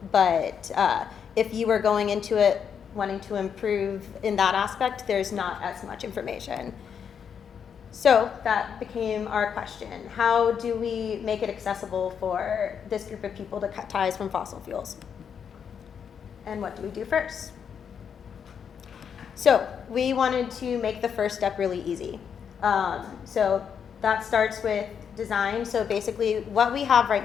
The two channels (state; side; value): quieter; right; 7.4 dB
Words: but if you were going into it wanting to improve in that aspect, there's not as much information. So that became our question. How do we make it accessible for this group of people to cut ties from fossil fuels? And what do we do first? So we wanted to make the first step really easy. So that starts with design. So basically what we have